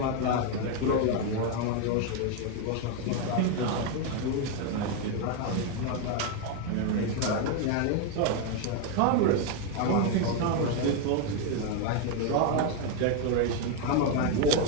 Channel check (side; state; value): both; different; correlation 0.01